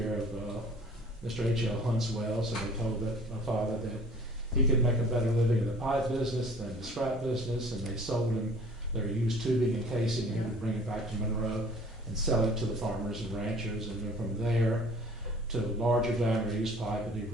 of Mr. H.L. Huntswell, so they told my father that he could make a better living in the pipe business than the scrap business, and they sold him their used tubing and casing, and he would bring it back to Monroe and sell it to the farmers and ranchers, and then from there to larger diameter used pipe, and he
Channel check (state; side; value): normal; both; correlation 0.50